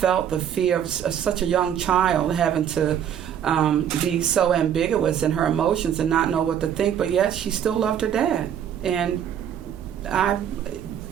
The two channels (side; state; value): left; quieter; 9.3 dB